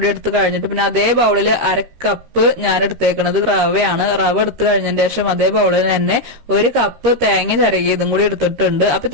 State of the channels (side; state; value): left; late; 13 ms